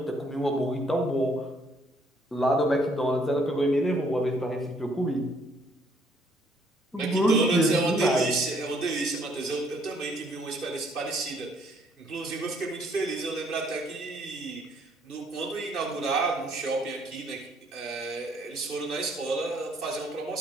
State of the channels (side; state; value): both; normal; correlation 0.66